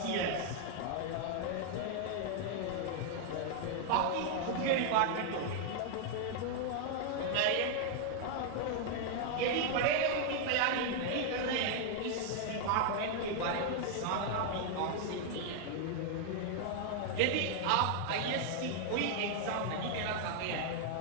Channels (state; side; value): different; both; correlation 0.00